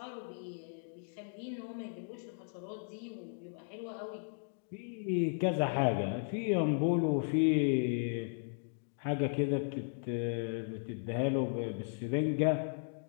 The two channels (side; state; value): right; silent; digital silence